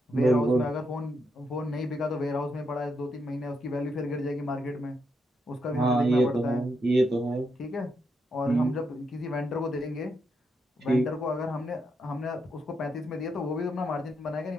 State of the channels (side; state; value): both; normal; correlation 0.81